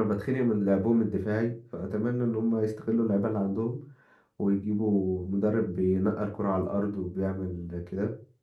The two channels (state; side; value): identical; both; correlation 1.00